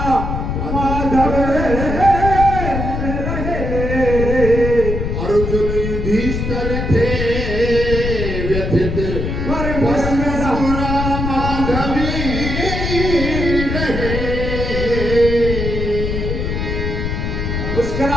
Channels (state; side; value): noise; left; rumble, 2 dB below the sound